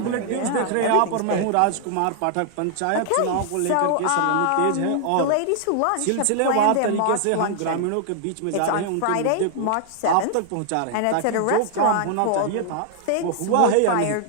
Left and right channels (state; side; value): different; both; correlation 0.00